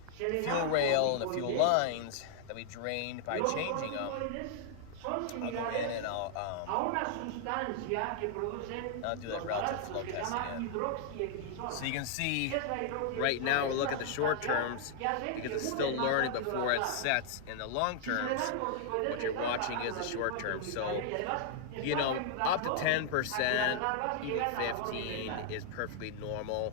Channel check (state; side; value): different; both; correlation -0.01